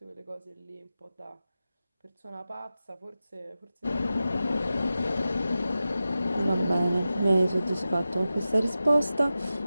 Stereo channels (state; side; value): inverted; both; correlation -0.93